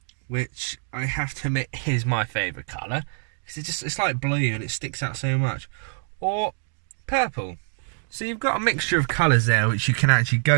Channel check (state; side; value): silent; left; 61 dB below the other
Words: which I have to admit is my favourite colour, because it's like blue and it sticks out so much, or purple. So you've got a mixture of colours there which you can actually